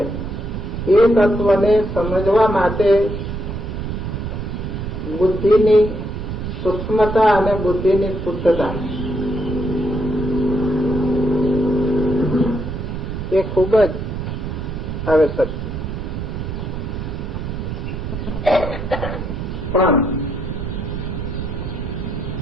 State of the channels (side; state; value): right; noise; rumble, 5 dB below the sound